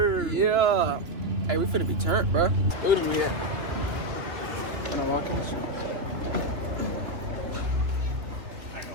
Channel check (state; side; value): late; left; 3.0 ms